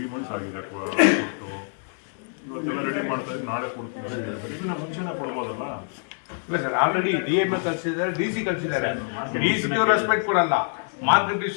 ಮಂತ್ಸ್ ಆಗಿದೆ ಕೊಟ್ಟು, ಇವತ್ತೆಲ್ಲ ರೆಡಿ ಮಾಡ್ತಾ ಇದ್ರೆ ನಾಳೆ ಕೊಡ್ತೀನಿ. ಇದನ್ನ ಮುಂಚೆನೇ ಕೊಡ್ಬೋದಲ್ಲ? ಇಲ್ಲ ಸರ್, ಆಲ್ರೆಡಿ DMA ಕಳಿಸಿದ್ದಾರೆ, DC ಕಳಿಸಿದ್ದಾರೆ. DC ರೆಸ್ಪೆಕ್ಟ್ ಕೊಡಲ್ಲ. ಮಾರ್ಕೆಟ್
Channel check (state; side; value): silent; right; 61 dB below the other